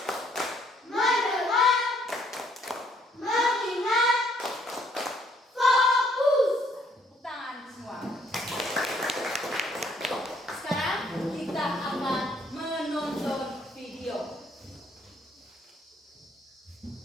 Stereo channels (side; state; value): both; normal; correlation 0.66